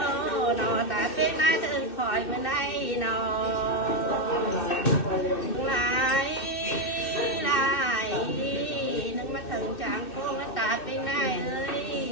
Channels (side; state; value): right; late; 2.6 ms